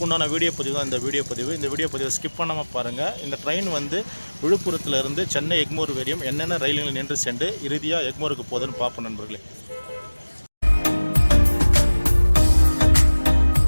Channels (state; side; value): inverted; both; correlation -1.00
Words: வீடியோ பதிவு தான் இந்த வீடியோ பதிவு. இந்த வீடியோ பதிவை ஸ்கிப் பண்ணாமல் பாருங்கள். இந்த ட்ரெயின் வந்து விழுப்புரத்துலேருந்து சென்னை எக்மோர் வரையும் என்னென்ன ரயில்கள் நின்று சென்று இறுதியாக எக்மோருக்கு போகுதுன்னு பார்ப்போம் நண்பர்களே.